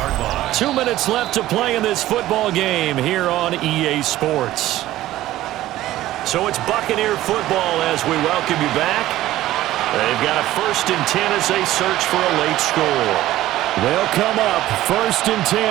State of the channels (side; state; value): left; quieter; 15.0 dB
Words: 2 minutes left to play in this football game here on EA Sports. So it's Buccaneer football as we welcome you back. They've got a 1st and 10 as they search for a late score. They'll come up 1st and